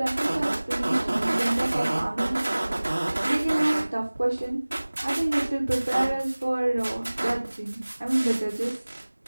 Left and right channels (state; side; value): inverted; both; correlation -1.00